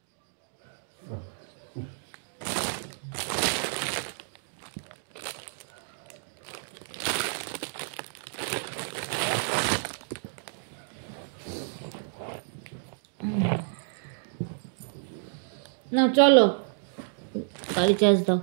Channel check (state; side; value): silent; left; digital silence